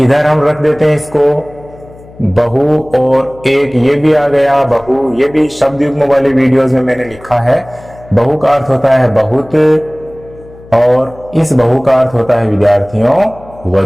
हम रख देते हैं इसको बहु, और एक ये भी आ गया बहु, ये भी शब्द युग्म वाले वीडियोस में मैंने लिखा है। बहु का अर्थ होता है बहुत, और इस बहु का अर्थ होता है विद्यार्थियों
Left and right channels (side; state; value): left; noise; hum, 22 dB below the sound